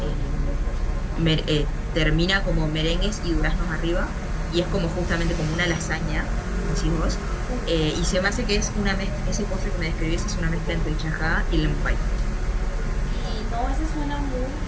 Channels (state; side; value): identical; both; correlation 1.00